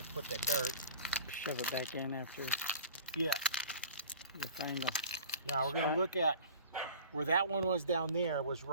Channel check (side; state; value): both; inverted; correlation -0.42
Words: put that dirt. Shove it back in after Yeah. you find them. Now we're gonna look at where that one was down there was